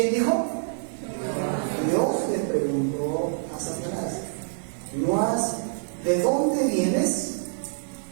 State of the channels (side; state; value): left; silent; digital silence